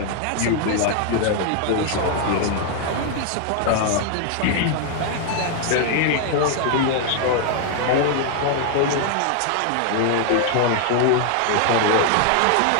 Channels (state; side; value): different; both; correlation 0.00